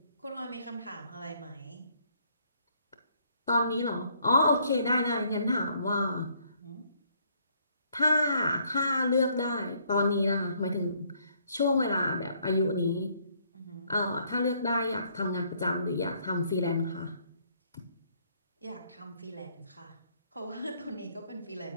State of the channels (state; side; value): inverted; both; correlation -0.67